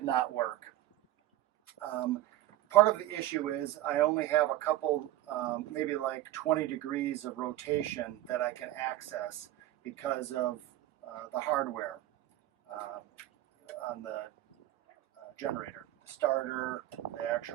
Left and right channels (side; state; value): left; quieter; 14.5 dB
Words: not work. Part of the issue is I only have a couple, maybe like 20 degrees of rotation that I can access because of the hardware on the generator, the starter, the